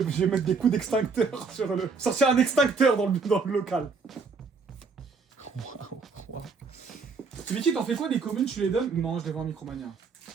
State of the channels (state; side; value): quieter; left; 4.8 dB